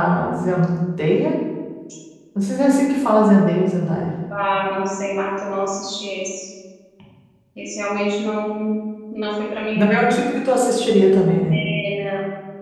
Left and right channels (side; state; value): both; identical; correlation 1.00